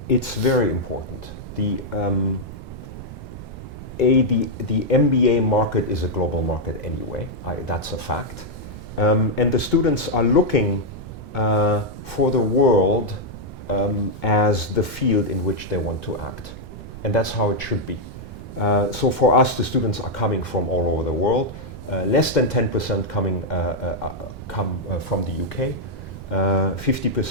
It's very important. The MBA market is a global market anyway. That's a fact. And the students are looking for the world as the field in which they want to act. And that's how it should be. So for us, the students are coming from all over the world. Less than 10% come from the UK.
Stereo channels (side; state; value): right; noise; rumble, 13 dB below the sound